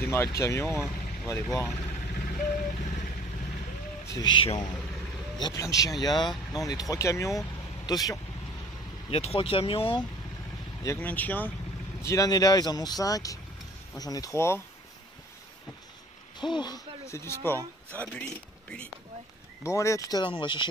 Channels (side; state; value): both; normal; correlation 0.51